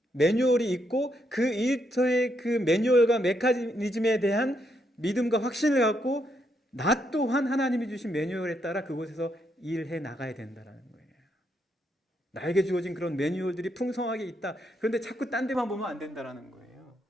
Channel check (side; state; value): both; normal; correlation 0.77